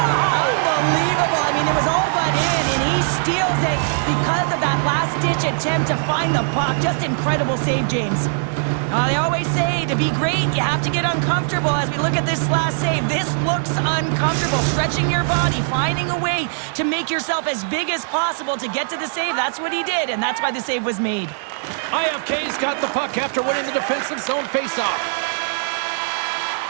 Unbelievable. I mean, it was all but in, and he steals it because of that last-ditch attempt to find the puck. Just incredible save, James. They always say to be great, you have to get uncomfortable. As we look at this last save, this looks uncomfortable. Stretching your body, finding a way to make yourself as big as possible to get to the save. That's what he did, and that's why the save was made. IFK's got the puck after winning the defensive zone faceoff.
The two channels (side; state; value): left; silent; digital silence